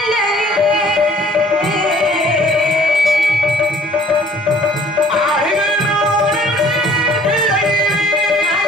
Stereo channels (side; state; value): both; normal; correlation 0.55